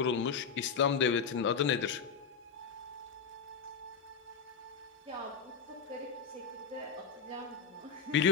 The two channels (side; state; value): right; quieter; 6.2 dB